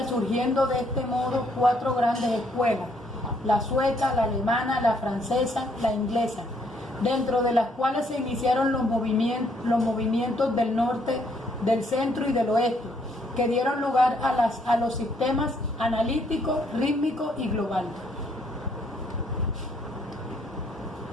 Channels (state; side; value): normal; both; correlation 0.69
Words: surgiendo de este modo 4 grandes escuelas: la sueca, la alemana, la francesa, la inglesa, dentro de las cuales se iniciaron los movimientos del norte, del centro y del oeste, que dieron lugar a los sistemas analítico, rítmico y global.